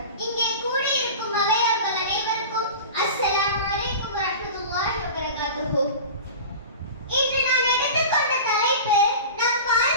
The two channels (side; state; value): both; inverted; correlation -0.33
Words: இங்கே கூடியிருக்கும் அவையார்கள் அனைவருக்கும் அஸ்ஸலாமு அலைக்கும் வரஹ்மத்துல்லாஹி வபரகாத்துஹு. இன்று நான் எடுத்துக்கொண்ட தலைப்பு நம்